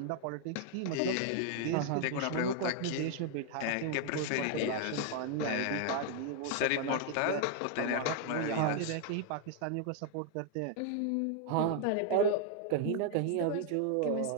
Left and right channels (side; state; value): both; different; correlation 0.00